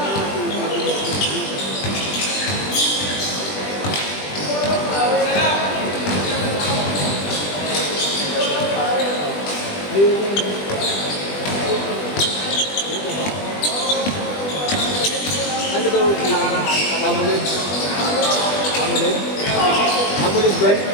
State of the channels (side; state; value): right; late; 20 ms